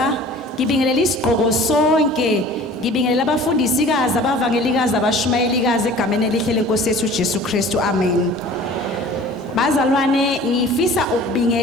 ngibingelela isiqhoko sonke, ngibingelela abafundisikazi abavangelikazi abashumayelikazi egameni elihle lenkosi yethu Jesu Kristu. Amen. Bazalwane ngifisa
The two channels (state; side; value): normal; both; correlation 0.45